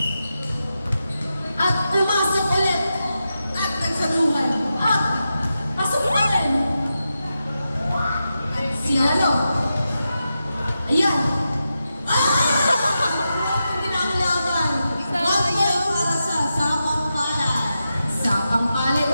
At pumasok ulit. At nagsaluhan. At pasok ulit. At sinalo. Ayan. Hindi na ang laban. 1 point para sa Pampalay. Sa Pampalay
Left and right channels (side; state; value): both; inverted; correlation -0.89